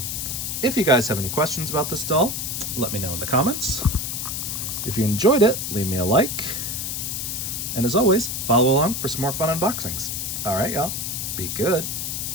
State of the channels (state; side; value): noise; left; hiss, 3 dB below the sound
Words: if you guys have any questions about this doll, let me know in the comments. If you enjoyed it, leave me a like. And as always, follow along for some more fun unboxings. All right, y'all. Be good.